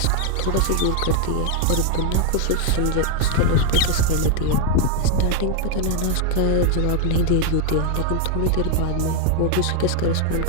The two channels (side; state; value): both; different; correlation 0.01